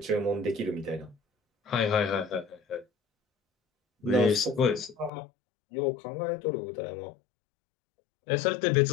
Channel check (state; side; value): drops out; right; at 5.1 s